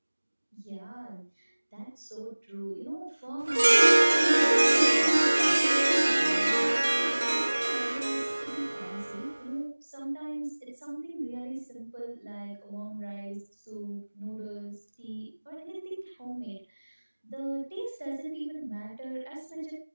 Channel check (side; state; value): both; inverted; correlation -1.00